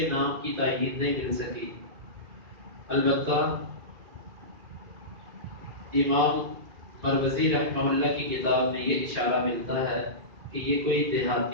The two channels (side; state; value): left; late; 2.4 ms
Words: نام کی تائید نہیں مل سکی، البتہ امام مروزی رحمہ اللہ کی کتاب میں یہ اشارہ ملتا ہے کہ یہ کوئی